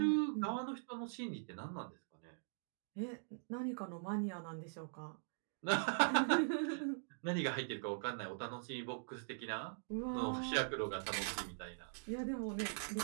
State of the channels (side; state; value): left; silent; digital silence